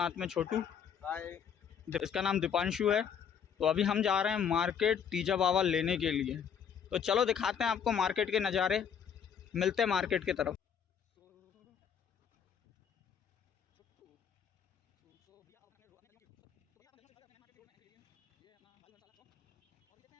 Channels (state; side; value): quieter; right; 7.7 dB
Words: में छोटू, इसका नाम दीपांशु है। तो अभी हम जा रहे हैं मार्केट तीजा बाबा लेने के लिए। तो चलो दिखाते हैं आपको मार्केट के नज़ारे। मिलते हैं मार्केट की तरफ।